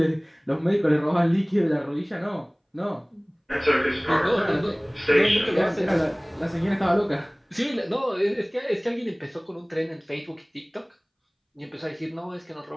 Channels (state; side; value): identical; both; correlation 1.00